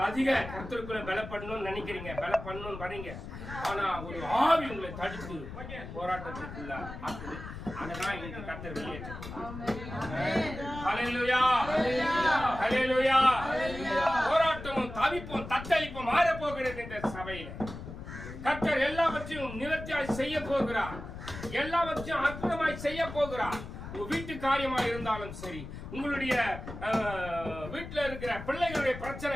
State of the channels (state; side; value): noise; left; rumble, 10 dB below the sound